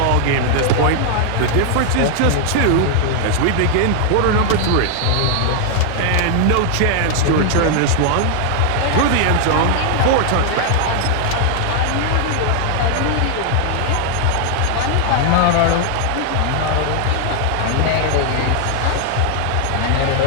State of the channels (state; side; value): different; both; correlation 0.00